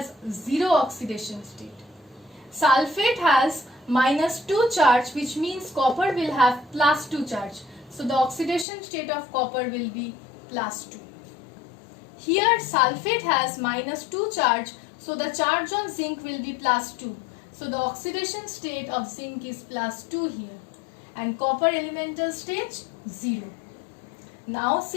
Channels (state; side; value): drops out; right; at 8.7 s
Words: 0 oxidation state. Sulfate has -2 charge, which means copper will have +2 charge. So the oxidation state of copper will be +2. Here sulfate has -2 charge, so the charge on zinc will be +2. So the oxidation state of zinc is +2 here, and copper elemental stage 0. Now